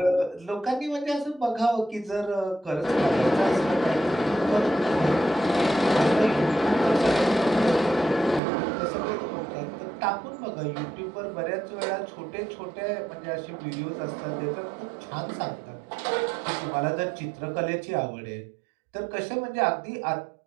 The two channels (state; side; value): drops out; left; at 8.4 s